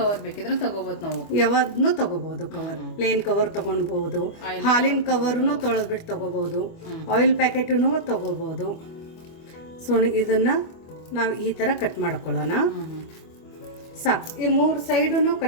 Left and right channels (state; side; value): late; right; 25 ms